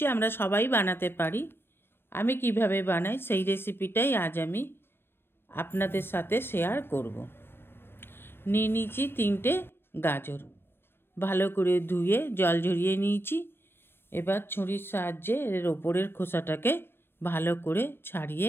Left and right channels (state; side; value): late; right; 0.11 ms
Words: আমরা সবাই বানাতে পারি। আমি কিভাবে বানাই সেই রেসিপিটাই আজ আমি আপনাদের সাথে শেয়ার করব। নিয়ে নিয়েছি 3টে গাজর, ভালো করে ধুয়ে জল ঝরিয়ে নিয়েছি। এবার ছুরির সাহায্যে এর ওপরের খোসাটাকে ভালো করে ছাড়িয়ে